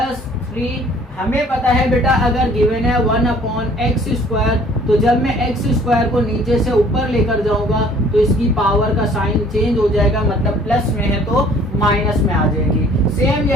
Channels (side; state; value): both; normal; correlation 0.55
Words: 3। हमें पता है बेटा अगर गिवन है 1 अपॉन एक्स स्क्वायर, तो जब मैं एक्स स्क्वायर को नीचे से ऊपर लेकर जाऊंगा तो इसकी पावर का साइन चेंज हो जाएगा, मतलब प्लस में है तो माइनस में आ जाएगी। सेम